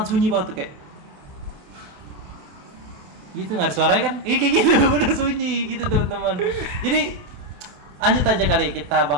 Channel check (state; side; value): late; left; 28 ms